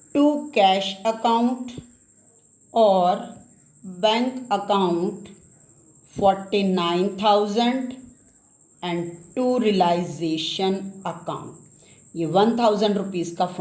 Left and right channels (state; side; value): identical; both; correlation 1.00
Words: to cash account और bank account 49,000 and to realisation account. ये 1,000 रुपीज़ का